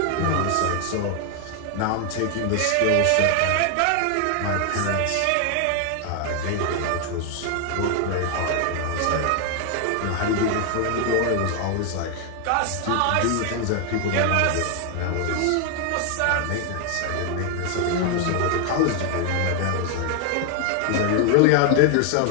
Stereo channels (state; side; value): different; both; correlation 0.01